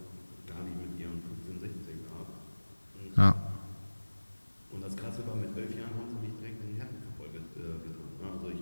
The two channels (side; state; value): both; inverted; correlation -1.00